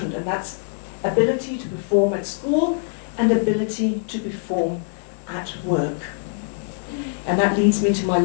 and that's ability to perform at school and ability to perform at work. And that leads me to my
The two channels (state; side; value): silent; right; digital silence